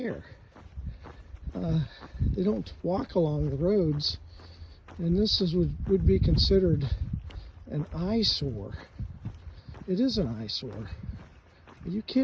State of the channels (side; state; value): both; identical; correlation 1.00